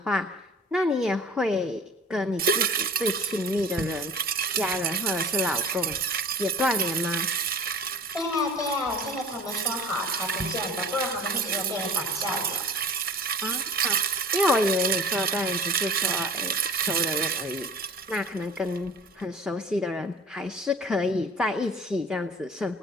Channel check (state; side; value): normal; both; correlation 0.42